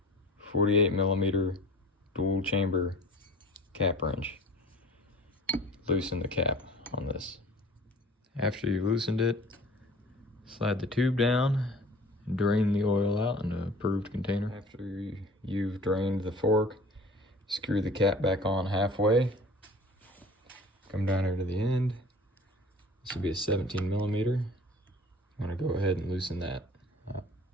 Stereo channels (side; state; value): both; normal; correlation 0.45